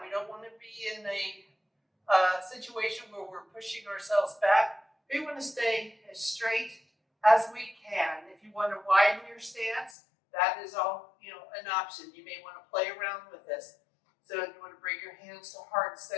We don't want to be in a situation where we're pushing ourselves back. We want to stay as straight as we can. If you want to widen your stance, that is all, an option. You may want to play around with this. So you want to bring your hands to heart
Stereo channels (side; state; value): right; drops out; at 10.0 s